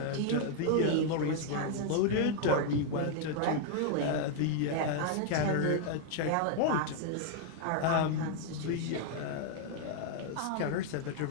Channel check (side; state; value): both; different; correlation 0.00